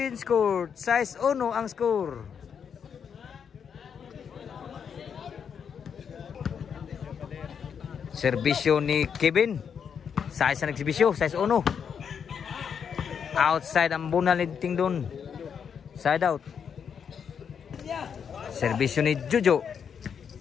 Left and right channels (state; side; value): quieter; right; 7.2 dB